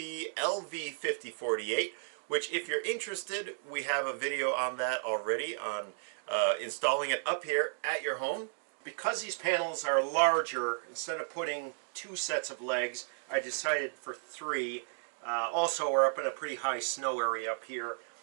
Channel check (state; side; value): silent; left; digital silence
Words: LV5048, which, if you're interested, we have a video on that already on installing it up here at your home. Because these panels are larger, instead of putting two sets of legs, I decided for three. Also, we're up in a pretty high snow area up here,